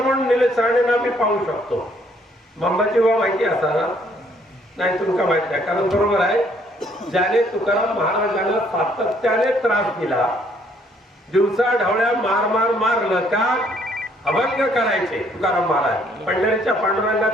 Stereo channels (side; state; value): both; normal; correlation 0.65